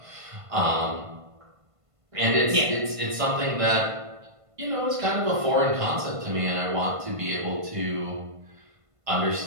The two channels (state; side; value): late; left; 1.5 ms